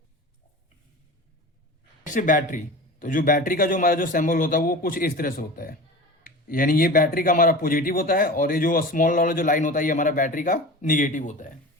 है बैटरी। तो जो बैटरी का जो हमारा जो सिंबल होता है वो कुछ इस तरह से होता है, यानी ये बैटरी का हमारा पॉजिटिव होता है और ये जो स्मॉल वाला जो लाइन होता है ये हमारा बैटरी का निगेटिव होता है।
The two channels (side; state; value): both; normal; correlation 0.34